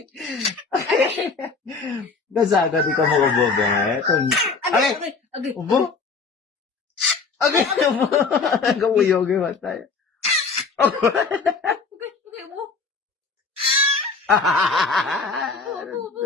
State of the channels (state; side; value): quieter; right; 4.6 dB